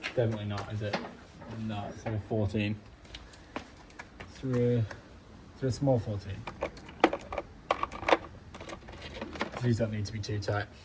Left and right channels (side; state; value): both; identical; correlation 1.00